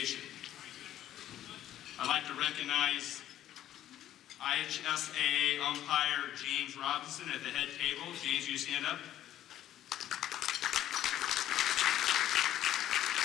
I'd like to recognize IHSAA umpire James Robinson at the head table. James, will you stand up?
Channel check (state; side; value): quieter; right; 12.2 dB